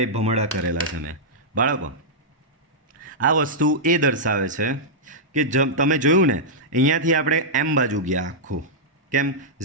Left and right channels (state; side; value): normal; both; correlation -0.09